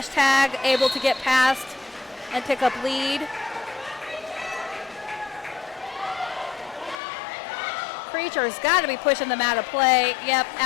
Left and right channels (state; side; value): drops out; right; at 7.0 s